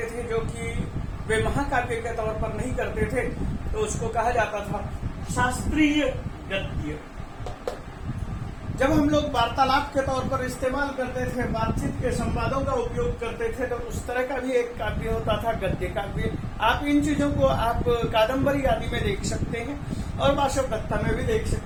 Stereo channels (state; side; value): identical; both; correlation 1.00